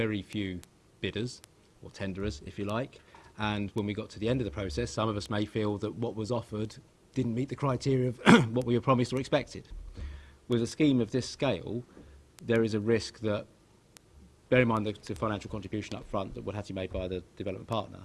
few bidders, or tenderers if you like, and when we got to the end of the process, some of us may feel that what was offered didn't meet the criteria of what we were promised or expected. With a scheme of this scale, there is a risk that, bear in mind the financial contribution up front that would have to be made by the development partner,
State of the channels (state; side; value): identical; both; correlation 1.00